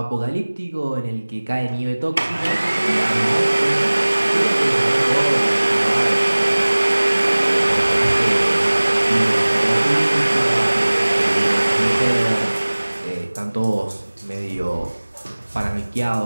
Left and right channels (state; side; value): inverted; both; correlation -1.00